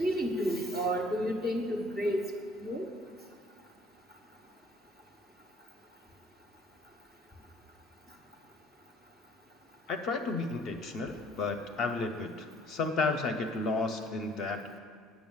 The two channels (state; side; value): normal; both; correlation 0.58